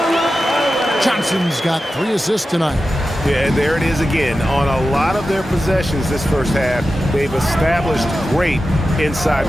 Johnson's got 3 assists tonight. Yeah, and there it is again. On a lot of their possessions this first half, they've established great inside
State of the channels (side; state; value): both; normal; correlation 0.92